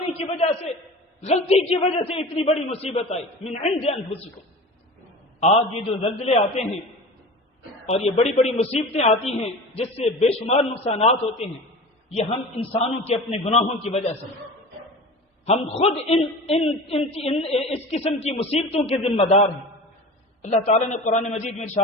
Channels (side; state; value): both; normal; correlation 0.34